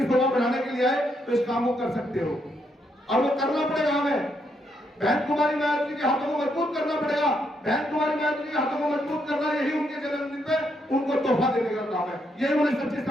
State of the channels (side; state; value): both; normal; correlation 0.77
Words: शोभा बढ़ाने के लिए आए, तो इस काम को कर सकते हो और वो करना पड़ेगा हमें। बहन कुमारी मायावती के हाथों को मजबूत करना पड़ेगा। बहन कुमारी मायावती के हाथों को मजबूत करना, यही उनके जन्मदिन पे उनको तोहफा देने का काम है, यही उन्हें सच्ची